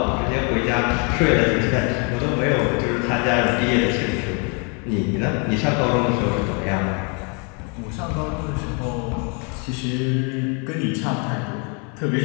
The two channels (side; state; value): right; quieter; 35.3 dB